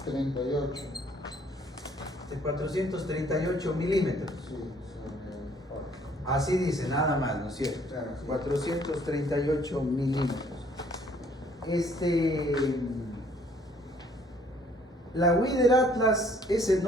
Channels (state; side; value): normal; both; correlation 0.61